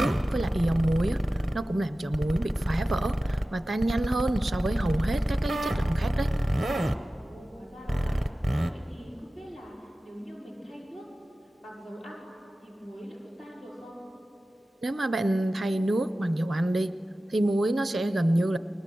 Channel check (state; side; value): normal; both; correlation 0.96